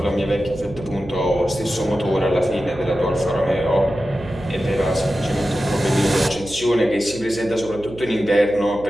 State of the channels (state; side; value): noise; right; hum, 16 dB below the sound